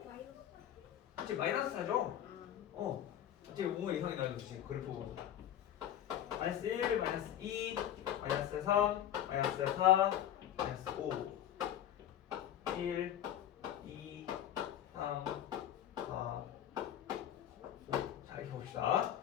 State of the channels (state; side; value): quieter; right; 11.1 dB